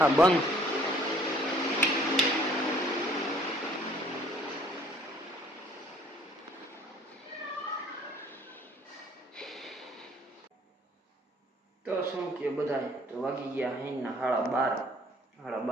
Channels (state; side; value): normal; both; correlation 0.58